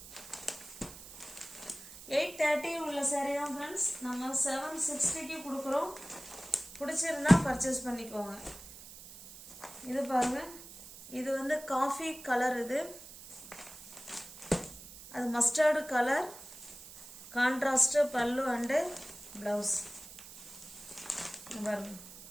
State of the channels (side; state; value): right; noise; hiss, 16 dB below the sound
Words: $830 உள்ள சாரீ தான் ஃப்ரெண்ட்ஸ் நம்ம 760க்கு கொடுக்குறோம். பிடிச்சிருந்தா பர்ச்சேஸ் பண்ணிக்கோங்க. இது பாருங்க, இது வந்து காஃபி கலர். இது அது mustard colour. Contrast pallu and blouse. பாருங்க,